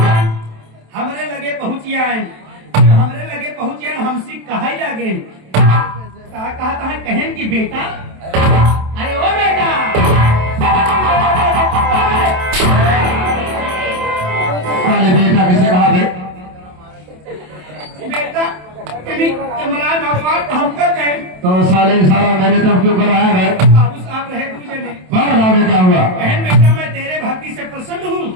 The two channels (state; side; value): late; left; 27 ms